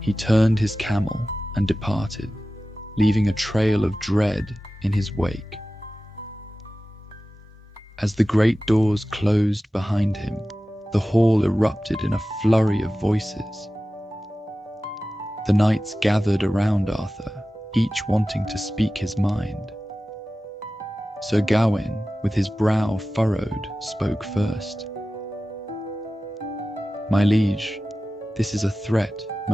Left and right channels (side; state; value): both; normal; correlation 0.95